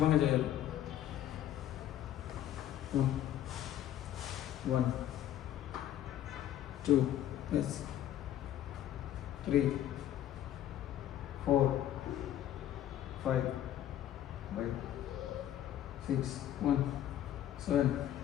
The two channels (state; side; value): quieter; right; 11.7 dB